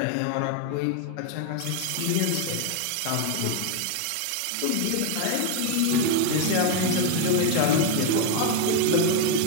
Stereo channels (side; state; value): both; different; correlation 0.01